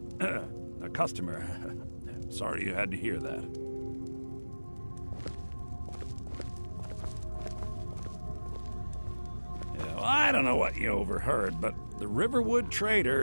a customer. Sorry you had to hear that. Yeah, well, I don't know what you overheard, but the Riverwood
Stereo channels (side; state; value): both; inverted; correlation -1.00